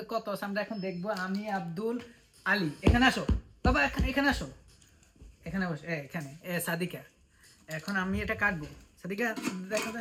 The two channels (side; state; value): both; identical; correlation 1.00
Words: কত আছে আমরা এখন দেখবো। আমি আব্দুল আলী, এখানে আসো বাবা, এখানে আসো, এখানে বসো, এখানে সাদিকা। এখন আমি এটা কাটবো। সাদিকা, দেখো